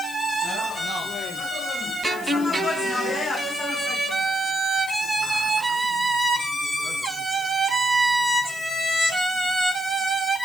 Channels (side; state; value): left; noise; hiss, 16 dB below the sound